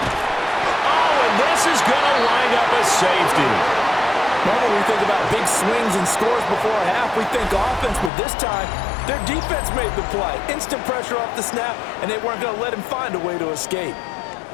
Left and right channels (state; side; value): drops out; right; at 8.1 s